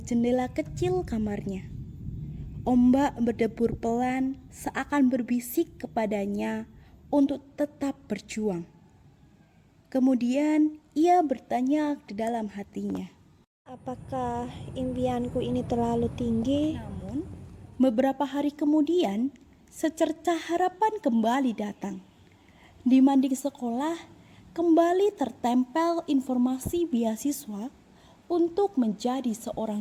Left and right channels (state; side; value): identical; both; correlation 1.00